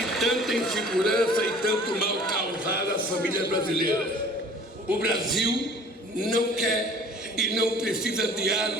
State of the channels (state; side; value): normal; both; correlation 0.49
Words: insegurança e tanto mal causaram às famílias brasileiras. O Brasil não quer e não precisa de